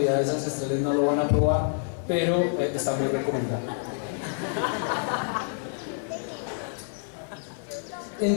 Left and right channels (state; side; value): silent; right; 56 dB below the other